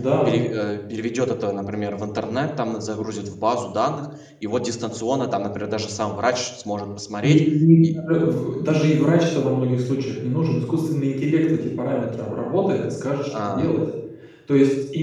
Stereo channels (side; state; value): both; identical; correlation 1.00